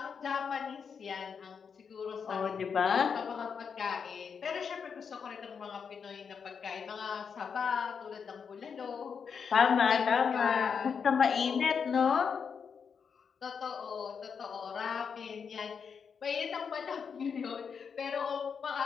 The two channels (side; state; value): right; quieter; 6.4 dB